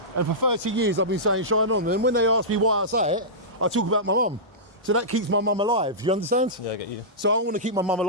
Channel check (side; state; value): both; normal; correlation -0.16